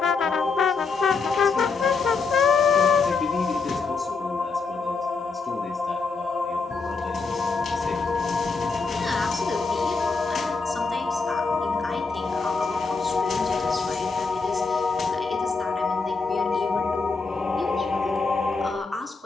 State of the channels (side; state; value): right; quieter; 4.5 dB